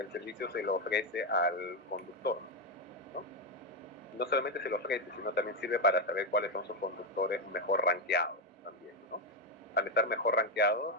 el servicio se lo ofrece al conductor, ¿no? No solamente se lo ofrece, sino también sirve para saber cuáles son sus conductores mejor rankeados también, ¿no? Al estar mejor rankeados,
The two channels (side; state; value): both; normal; correlation 0.06